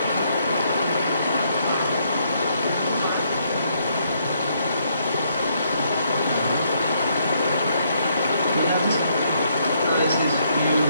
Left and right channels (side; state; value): both; inverted; correlation -0.71